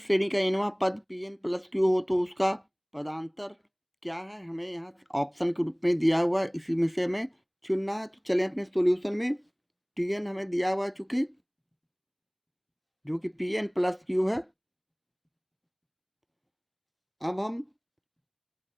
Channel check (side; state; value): both; identical; correlation 1.00